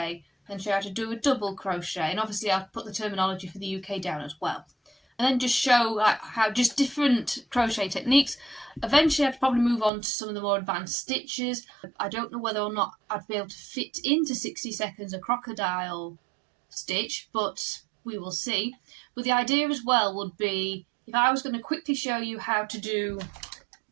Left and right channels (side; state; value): left; drops out; at 9.9 s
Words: then show you how to do a double crochet, and obviously I'll put the terminology for the UK down as well. And then just show how just different crochet techniques. Eventually I'd probably move on to some of the more advanced stitches. I don't know whether or not I'd be able to fit into 60 seconds a crocodile stitch, but we will see. But the idea as well would be, if I was going to quickly show you how to do,